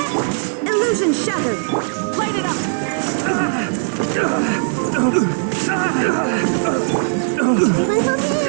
Illusion shattered! Light it up!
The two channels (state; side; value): silent; left; digital silence